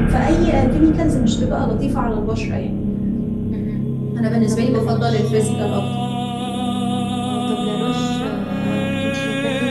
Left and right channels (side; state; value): both; identical; correlation 1.00